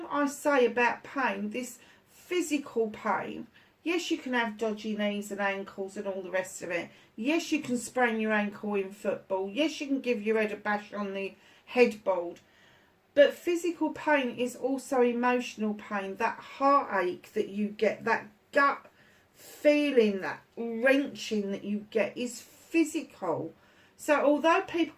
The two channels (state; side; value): identical; both; correlation 1.00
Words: I say about pain, this physical pain, yes, you can have dodgy knees and ankles and all the rest of it. Yes, you can sprain your ankle in football. Yes, you can give your head a bash on the headboard. But physical pain is also emotional pain. That heartache that you get, that gut feeling, that wrenching that you get is physical. So although people